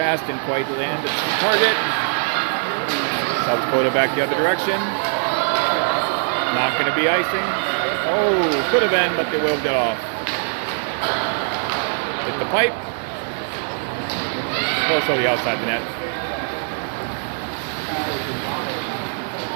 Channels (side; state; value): left; silent; 64 dB below the other